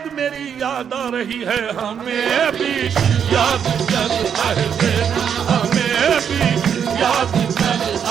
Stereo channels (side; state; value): left; quieter; 7.9 dB